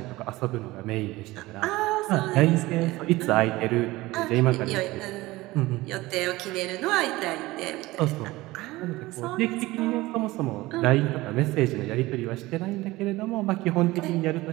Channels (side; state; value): left; quieter; 19.4 dB